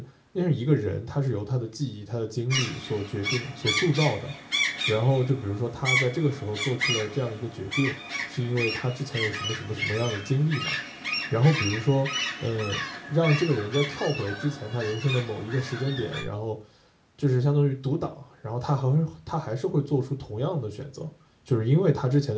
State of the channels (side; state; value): both; identical; correlation 1.00